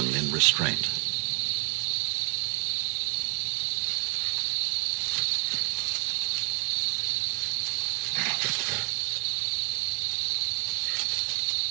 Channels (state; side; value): quieter; left; 33.9 dB